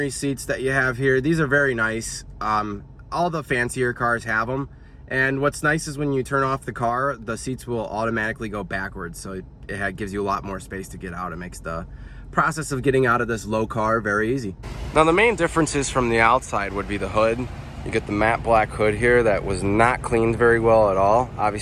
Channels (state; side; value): identical; both; correlation 1.00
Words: seats that you have here. These are very nice. All the fancier cars have them. And what's nice is when you turn off the car, the seats will automatically go backwards. So it gives you a lot more space to get out. It makes the process of getting out of this low car very easy. Now the main differences from the outside would be the hood. You get the matte black hood here that was not cleaned very well at all.